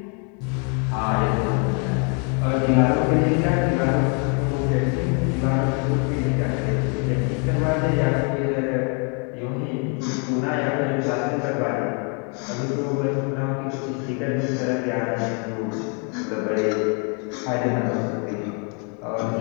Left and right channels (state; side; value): quieter; right; 37.4 dB